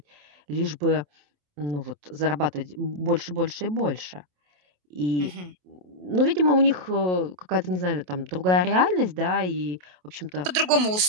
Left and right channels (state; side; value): late; left; 28 ms